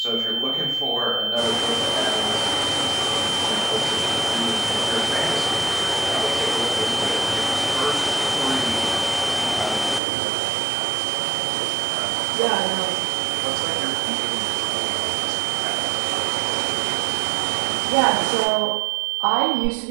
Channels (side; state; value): left; drops out; at 10.0 s